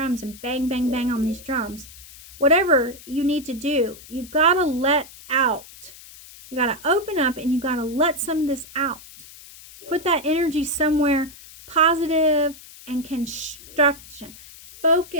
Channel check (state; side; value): noise; left; hiss, 19 dB below the sound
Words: and bang, bang, bang on these drums. Whatever you need to do, you gotta let out. You gotta open up and you gotta let some of this out. Put that energy somewhere positive and construction.